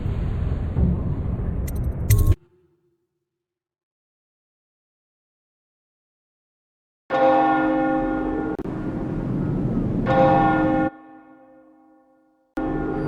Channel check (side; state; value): both; identical; correlation 1.00